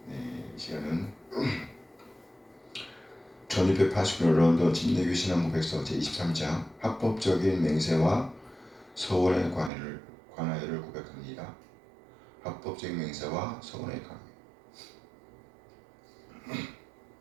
네, 이 시간은 1689년 런던 침례교 신앙고백서 제23장 합법적인 맹세와 서원의 관하여를 고백합니다. 합법적인 맹세와 서원의 관하여.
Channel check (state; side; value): drops out; left; at 9.7 s